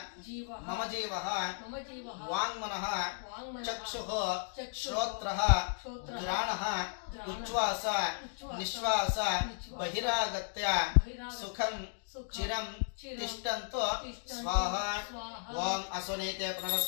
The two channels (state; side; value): silent; right; digital silence